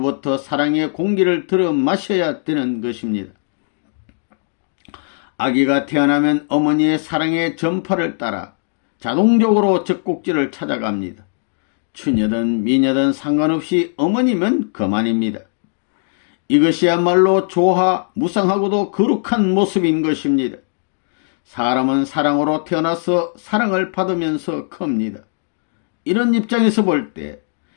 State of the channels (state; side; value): silent; right; digital silence